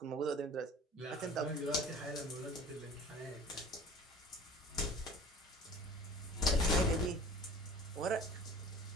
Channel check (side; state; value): both; normal; correlation 0.43